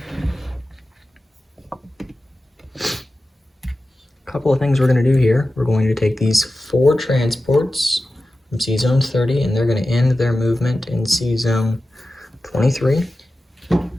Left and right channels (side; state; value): both; normal; correlation 0.94